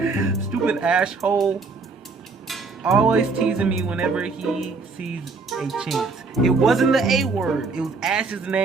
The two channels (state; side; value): quieter; left; 4.2 dB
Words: Stupid Ash hole. Always teasing me whenever he sees a chance. It wasn't the A word. It was Ash's